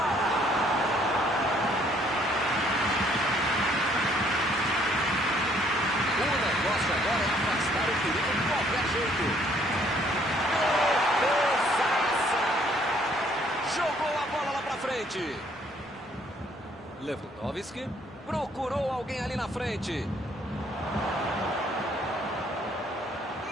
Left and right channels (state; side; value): normal; both; correlation 0.64